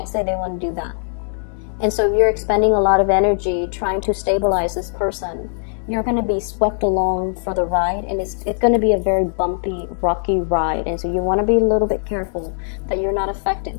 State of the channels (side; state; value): right; silent; digital silence